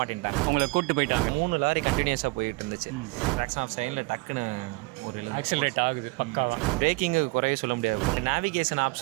மாட்டேன்ட்டாங்க. உங்களை கூப்பிட்டு போயிட்டாங்க. 3 லாரி கண்டினியூஸாக போயிட்டு இருந்துச்சு. ட்ராக்ஷன் ஆஃப் சைடில் டக்குன்னு ஒரு ஆக்சிலரேட் ஆகுது பக்காவா. பிரேக்கிங்கு குறைய சொல்ல முடியாது. நேவிகேஷன்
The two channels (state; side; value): quieter; left; 25.4 dB